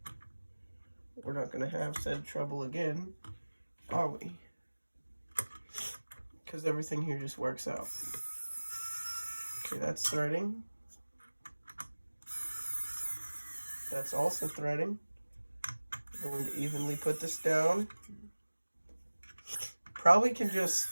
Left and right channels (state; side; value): inverted; both; correlation -1.00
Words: We're not going to have said trouble again, are we? Because everything here just works out. Okay, that's threading. That's also threading. I'm going to evenly put this down. Probably can just